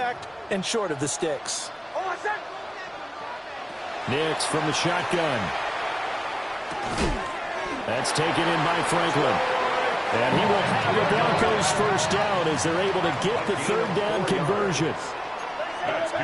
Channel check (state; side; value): identical; both; correlation 1.00